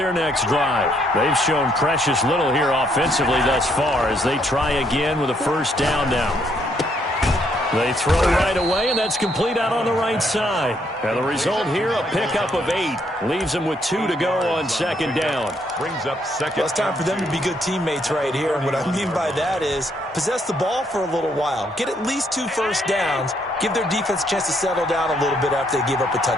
next drive. They've shown precious little here offensively thus far as they try again with a 1st down now. They throw right away, and that's complete out on the right side. And the result here, a pickup of 8. Leaves them with 2 to go on 2nd down. Brings up 2nd. Well, it's time for them to be good teammates right here. And what I mean by that is possess the ball for a little while. Get at least 2 first downs. Give their defense a chance to settle down a little bit after they give up a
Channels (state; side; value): normal; both; correlation 0.71